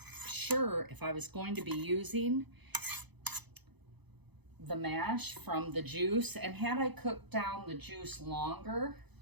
sure if I was going to be using the mash from the juice, and had I cooked down the juice longer,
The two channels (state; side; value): late; left; 0.99 ms